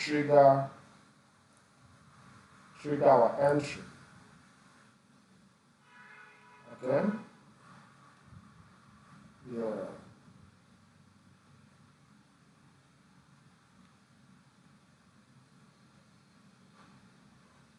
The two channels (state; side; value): identical; both; correlation 1.00